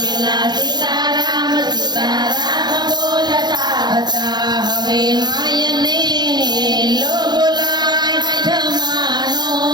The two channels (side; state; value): left; late; 0.21 ms